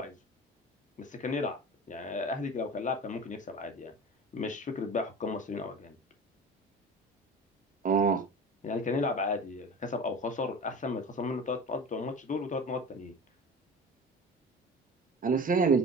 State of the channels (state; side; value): normal; both; correlation 0.35